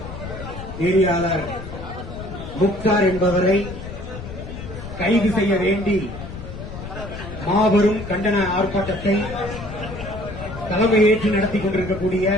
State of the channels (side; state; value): left; noise; rumble, 10 dB below the sound